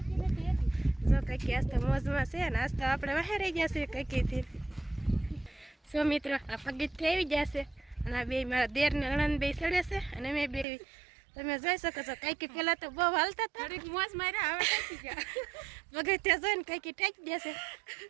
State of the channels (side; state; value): left; drops out; at 10.7 s